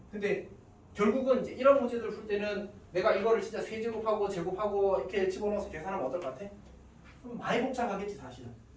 근데 결국은 이제 이런 문제들을 풀 때는 내가 이거를 진짜 세제곱하고 제곱하고 이렇게 집어넣어서 계산하면 어떨 것 같아? 그럼 많이 복잡하겠지 사실은.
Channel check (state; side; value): identical; both; correlation 1.00